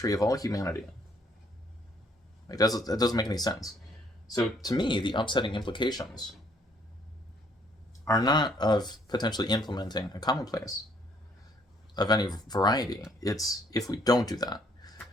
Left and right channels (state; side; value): normal; both; correlation 0.65